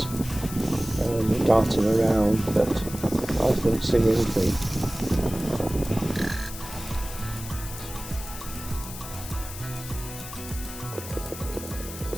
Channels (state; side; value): noise; left; hiss, 11 dB below the sound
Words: darting around, but I couldn't see anything.